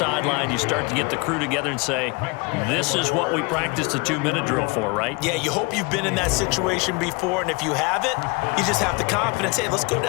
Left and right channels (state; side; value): quieter; right; 28.1 dB